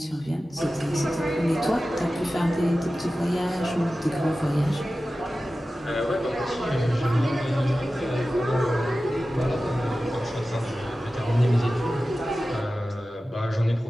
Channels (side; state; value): both; normal; correlation 0.95